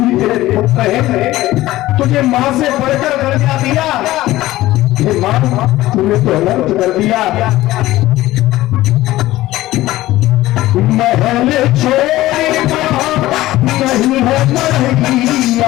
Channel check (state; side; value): quieter; right; 16.5 dB